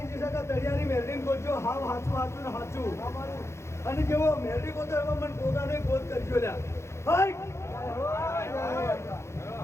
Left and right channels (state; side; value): late; right; 0.13 ms